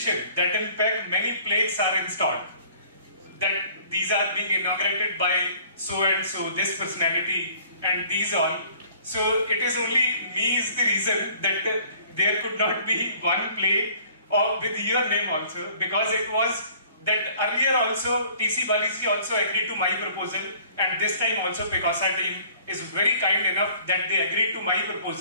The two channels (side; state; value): both; inverted; correlation -0.54